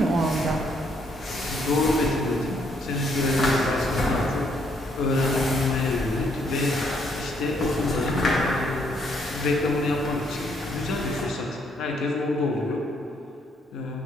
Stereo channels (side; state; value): both; normal; correlation 0.71